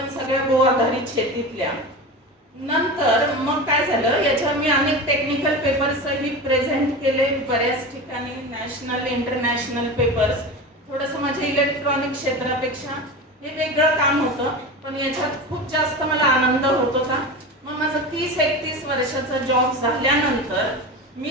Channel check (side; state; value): both; normal; correlation 0.27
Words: सगळ्या गो आधारित शेतीतल्या. नंतर मग काय झालं, याच्यावर मी अनेक टेक्निकल पेपर्सही प्रेझेंट केले बऱ्याच ठिकाणी, नॅशनल इंटरनॅशनल पेपर्स. थोडंसं माझ्या इलेक्ट्रॉनिक क्षेत्रापेक्षा हे वेगळं काम होतं, पण याच्यात खूप जास्त मला आनंद होत होता. मग माझं 30-31 वर्षाचा जॉब झाल्यानंतर